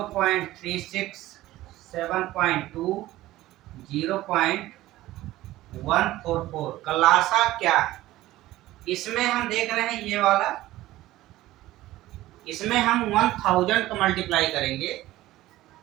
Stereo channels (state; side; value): quieter; left; 16.2 dB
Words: 7.2, 0.144 का लासा क्या है। इसमें हम देख रहे हैं ये वाला, इसमें हम 1000 का मल्टीप्लाई करेंगे,